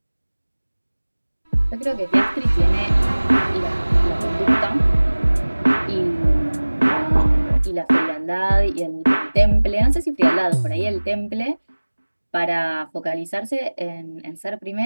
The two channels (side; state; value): both; inverted; correlation -1.00